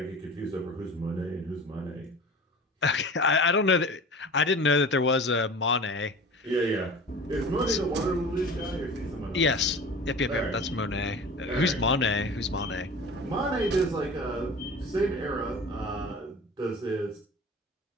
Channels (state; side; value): normal; both; correlation 0.38